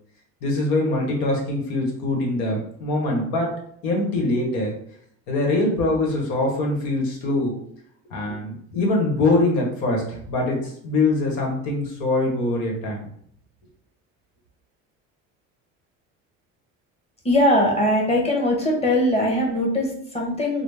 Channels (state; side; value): normal; both; correlation 0.29